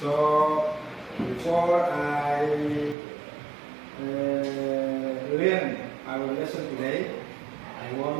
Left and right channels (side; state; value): left; drops out; at 3.0 s